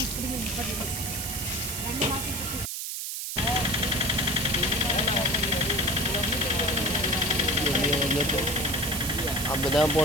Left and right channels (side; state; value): right; noise; hiss, 4 dB below the sound